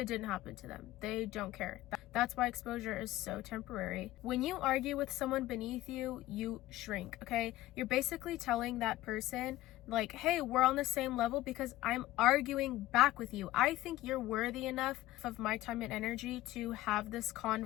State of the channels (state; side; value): quieter; right; 16.3 dB